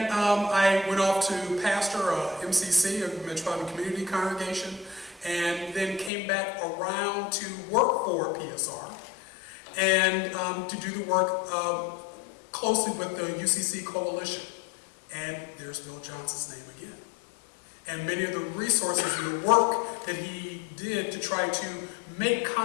I went off to pastor MCC, a Metropolitan Community Congregation, and then came back around to work for PSR and to do the work closely with the UCC Coalition. And there's Bill Johnson's name again. And many of the resources and the work that he did to try to make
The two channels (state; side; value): drops out; right; at 6.1 s